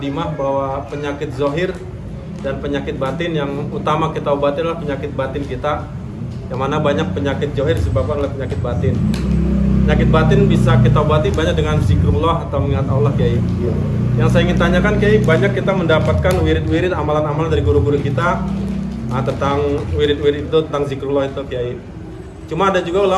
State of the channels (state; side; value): identical; both; correlation 1.00